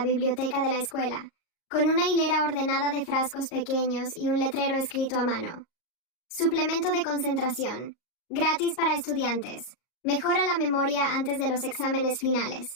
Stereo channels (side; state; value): right; late; 38 ms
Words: biblioteca de la escuela, con una hilera ordenada de frascos pequeños y un letrero escrito a mano. Suplemento de concentración. Gratis para estudiantes. Mejora la memoria antes de los exámenes